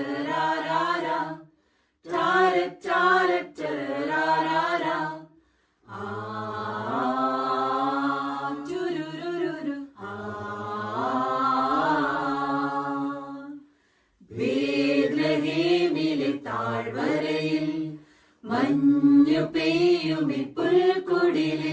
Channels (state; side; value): identical; both; correlation 1.00